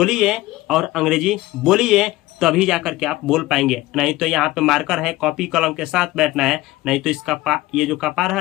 और अंग्रेजी बोलिए, तभी जाकर के आप बोल पाएंगे। नहीं तो यहाँ पे मार्कर है, कॉपी कलम के साथ बैठना है, नहीं तो इसका ये जो कपार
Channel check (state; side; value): quieter; right; 17.9 dB